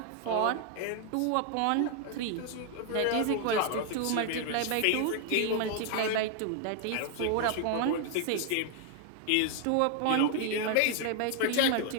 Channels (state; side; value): different; both; correlation 0.00